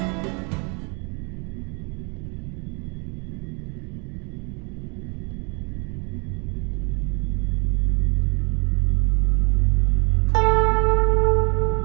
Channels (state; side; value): quieter; left; 33.4 dB